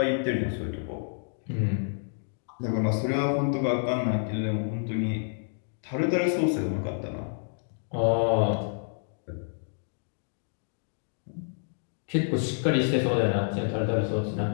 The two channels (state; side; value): silent; right; digital silence